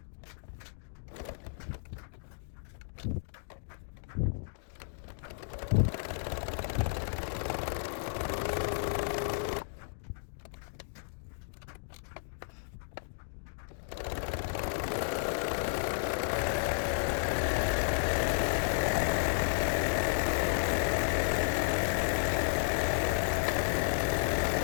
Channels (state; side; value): silent; right; digital silence